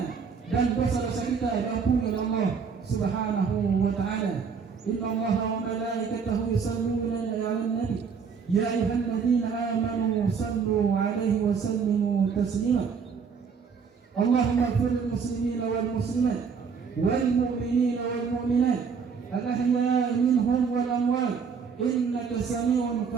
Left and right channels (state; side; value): quieter; left; 6.0 dB